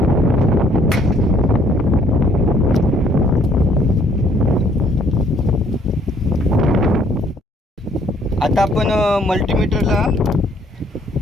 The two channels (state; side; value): normal; both; correlation 0.63